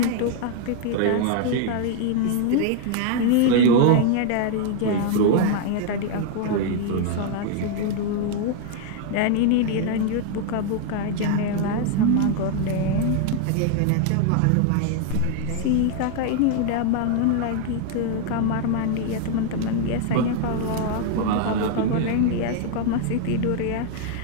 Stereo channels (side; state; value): both; different; correlation 0.00